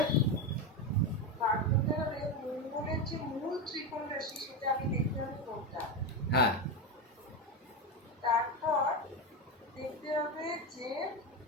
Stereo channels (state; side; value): normal; both; correlation 0.14